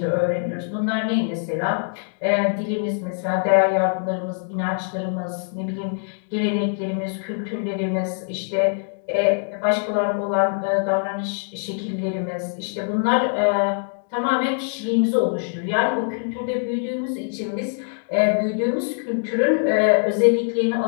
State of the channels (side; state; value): right; silent; digital silence